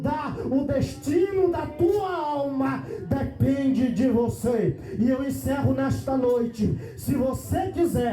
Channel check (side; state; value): both; identical; correlation 1.00